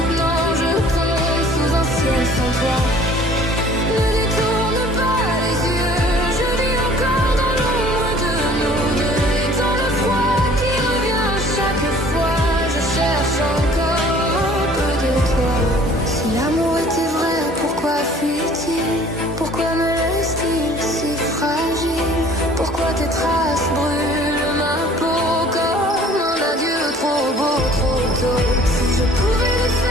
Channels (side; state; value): both; normal; correlation 0.52